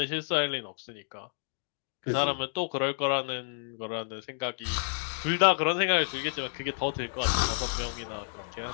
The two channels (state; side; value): silent; right; digital silence